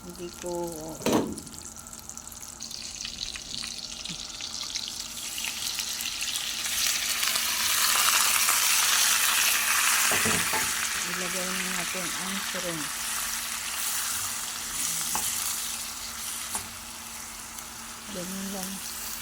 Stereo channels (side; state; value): both; identical; correlation 1.00